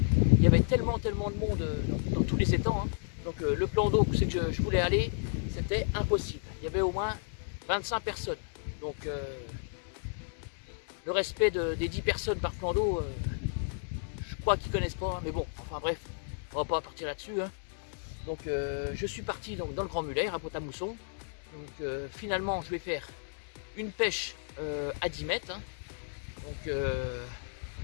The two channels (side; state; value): right; silent; 56 dB below the other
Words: il y avait tellement de monde dans tous les étangs. Donc le plan d'eau où c'est que je voulais aller, c'était impossible. Il y avait au moins 25 personnes. Donc le respect des 10 personnes par plan d'eau, je crois qu'ils ne connaissent pas. Mais bon, enfin bref, on va pas partir là-dessus. Donc je suis parti dans le Grand Muller, à Pont-à-Mousson. Donc finalement, je vais faire une pêche à 10 mètres.